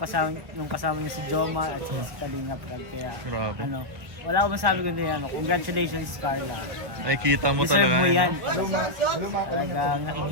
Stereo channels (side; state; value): left; late; 1.1 ms